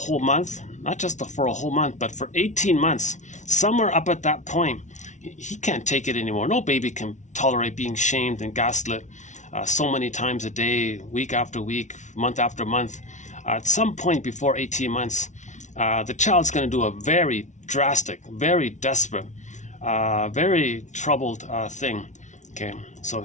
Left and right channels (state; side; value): late; right; 0.35 ms